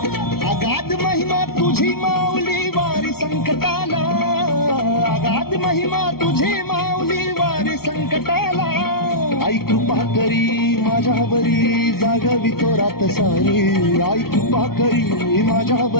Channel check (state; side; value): late; right; 0.94 ms